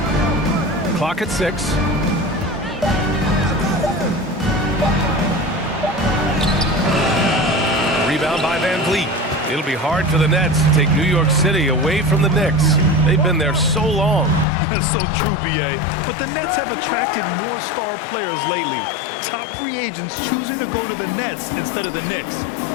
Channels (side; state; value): right; drops out; at 14.5 s